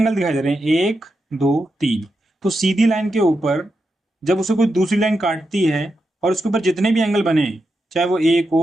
दिखाई दे रहे हैं, एक दो तीन। तो सीधी लाइन के ऊपर जब उसे कोई दूसरी लाइन काटती है और उसके ऊपर जितने भी एंगल बने, चाहे वो एक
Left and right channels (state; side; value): normal; both; correlation 0.87